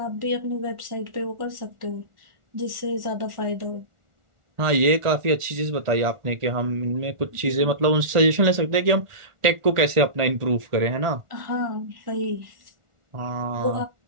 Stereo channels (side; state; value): left; late; 1.4 ms